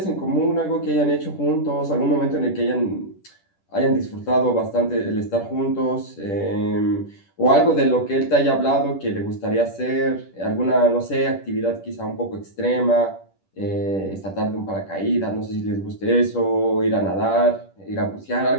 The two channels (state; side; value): late; right; 10 ms